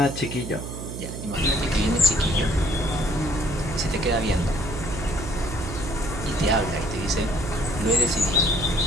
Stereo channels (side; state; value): right; noise; hum, 8 dB below the sound